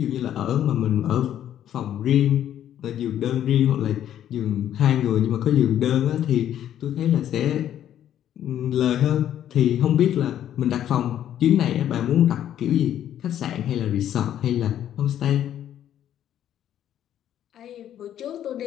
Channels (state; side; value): quieter; right; 10.9 dB